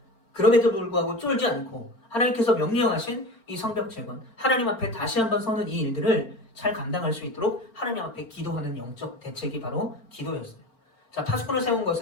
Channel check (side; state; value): right; late; 4.4 ms